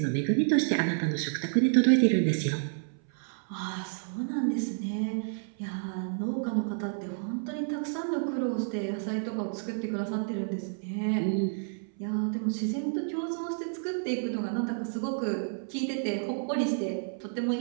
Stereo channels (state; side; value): silent; left; 58 dB below the other